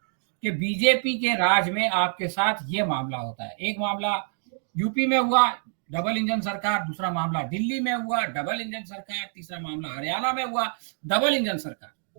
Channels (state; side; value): silent; left; 60 dB below the other